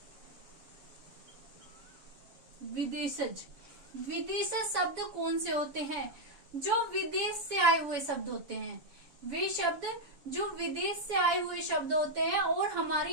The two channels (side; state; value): left; late; 7.1 ms